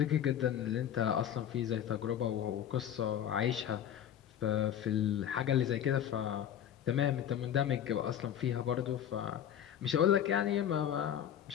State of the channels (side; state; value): right; quieter; 9.9 dB